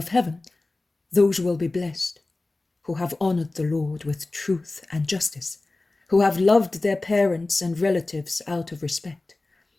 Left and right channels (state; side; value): quieter; right; 3.1 dB